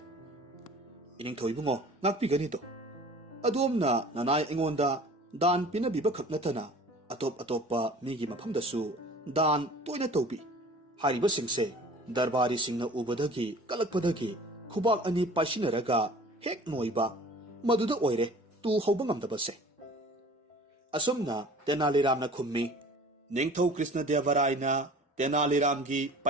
ꯏꯅꯤꯡꯊꯧ ꯏꯕꯨꯡꯉꯣ, ꯉꯥꯛꯄꯤꯒꯅꯤꯗꯣ꯫ ꯑꯗꯣꯝꯅ ꯅꯅꯥꯏ ꯑꯩꯉꯣꯟꯗ ꯗꯥꯟ ꯄꯤꯅꯕꯤꯕ ꯈꯛ ꯅꯠꯇꯅ ꯑꯇꯣꯞ ꯑꯇꯣꯞꯄ ꯃꯤꯒꯤ ꯃꯐꯝꯗꯁꯨ ꯗꯥꯟ ꯇꯣꯏꯅ ꯇꯧꯕꯤ꯫ ꯍꯥꯏꯔꯤꯕꯁꯤꯡꯁꯦ ꯗꯔꯕꯥꯔꯤꯁꯤꯡꯅ ꯎꯕꯗꯒꯤ ꯀꯜꯂꯛꯄꯗꯒꯤ ꯈꯨꯕꯥꯛ ꯑꯅꯤ ꯄꯥꯏꯁꯤꯟꯅꯔꯒ ꯍꯦꯛ ꯅꯣꯏꯕ, ꯃꯗꯨꯗ ꯑꯣꯏꯔꯦ ꯇꯨ ꯍꯧꯕ ꯉꯝꯗꯕꯁꯦ꯫ ꯑꯁꯨꯝꯅ ꯇꯦꯅꯥꯂꯤꯔꯥꯝꯅ ꯈꯨꯝꯃꯤ꯫ ꯅꯤꯡꯊꯧ ꯀ꯭ꯔꯤꯁꯅꯗꯦꯕꯔꯥꯏꯅ ꯇꯦꯅꯥꯂꯤꯔꯥꯝꯒꯤ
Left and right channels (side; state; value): both; normal; correlation 0.46